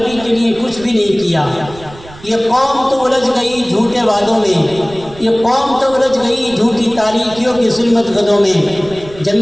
کے لیے کچھ بھی نہیں کیا۔ یہ قوم تو الجھ گئی جھوٹے وعدوں میں، یہ قوم تو الجھ گئی جھوٹی تاریکیوں کی ظلمت گدوں میں۔ جب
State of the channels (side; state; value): right; noise; rumble, 19 dB below the sound